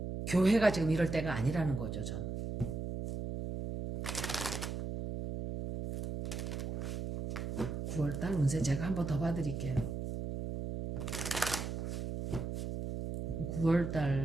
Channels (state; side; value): noise; right; hum, 4 dB below the sound